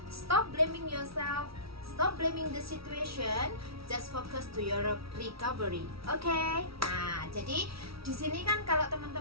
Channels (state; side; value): late; left; 0.75 ms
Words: Stop blaming yourself, stop blaming the situation, just focus to your recovery. Oke? Nah, jadi di sini kan kalau